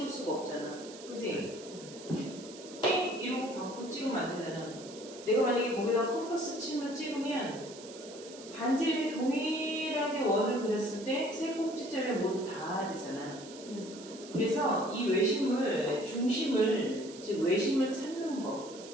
수가 없잖아. 그지? 땡! 이러고 바꾸고 찍으면 안 되잖아. 내가 만약에 거기다 컴퍼스 침을 찍으면 반지름이 동일하게 원을 그렸을 때 세 꼭지점에 모두 닿아야 되잖아. 그래서 이 외심을, 중심을, 즉 외심을 찾는 법,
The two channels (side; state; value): right; noise; hiss, 16 dB below the sound